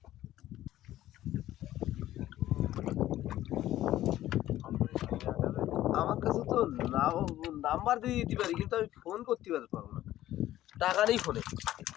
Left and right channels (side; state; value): right; quieter; 13.9 dB